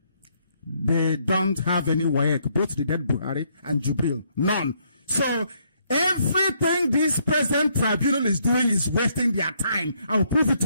They don't have any WAEC, both the dead Buhari and Jubril. None. So everything this present tribunal is doing is wasting their time. I will prove it to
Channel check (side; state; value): both; inverted; correlation -0.72